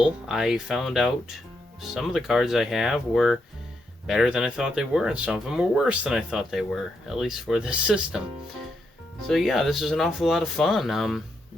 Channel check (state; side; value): normal; both; correlation 0.81